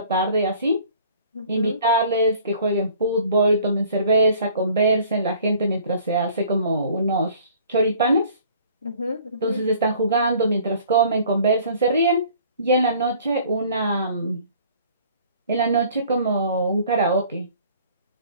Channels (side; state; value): both; inverted; correlation -0.53